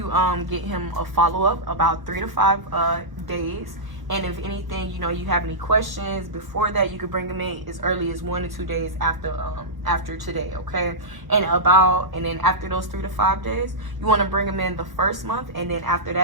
get him a follow-up about 3 to 5 days. And if anything, you know, you have any questions before that, you could bring them in as early as 1 to 2 days after today, okay? And then after those 3 to 5 days, you want to bring them in the first month, and then after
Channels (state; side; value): late; left; 1.1 ms